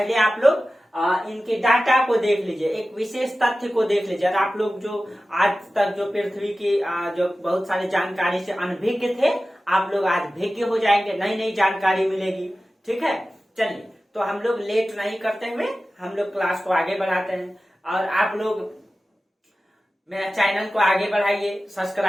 आप लोग इनके डाटा को देख लीजिए, एक विशेष तथ्य को देख लीजिए। आप लोग जो आज तक जो पृथ्वी की जो बहुत सारी जानकारी से अनभिज्ञ थे, आप लोग आज भिज्ञ हो जाएंगे, नई नई जानकारी मिलेगी, ठीक है। चलिए, तो हम लोग लेट नहीं करते हुए हम लोग क्लास को आगे बढ़ाते हैं और आप लोग मेरा चैनल को आगे बढ़ाइए,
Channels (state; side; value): normal; both; correlation 0.95